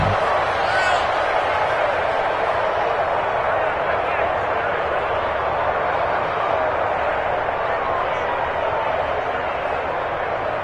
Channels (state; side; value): identical; both; correlation 1.00